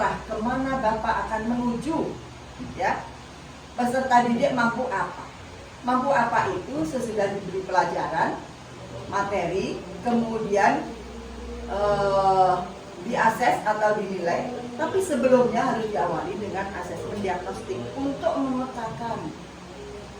kemana Bapak akan menuju, ya. Peserta didik mampu apa? Mampu apa itu sesudah diberi pelajaran, materi, kemudian diakses atau dinilai. Tapi sebelumnya harus diawali dengan asesmen diagnostik untuk memetakan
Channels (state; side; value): identical; both; correlation 1.00